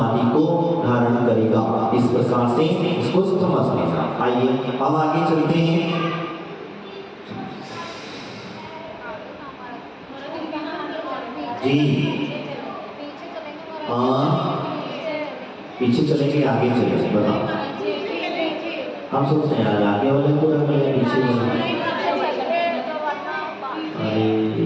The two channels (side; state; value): both; identical; correlation 1.00